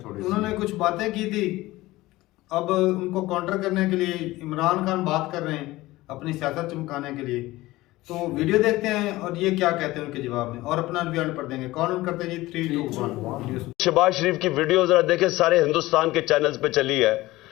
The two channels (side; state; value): right; quieter; 18.4 dB